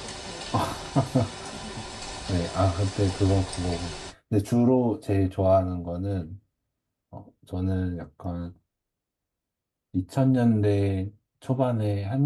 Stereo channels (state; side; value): identical; both; correlation 1.00